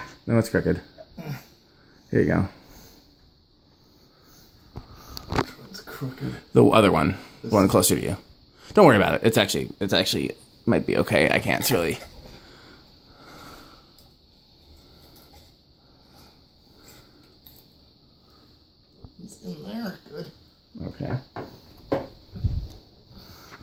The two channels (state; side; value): identical; both; correlation 1.00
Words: No, it's crooked. Here you go. Which one's crooked? The other one. The one closer to you. Don't worry about it. It's actually might be okay. I can't really. It's in there. Good. Okay.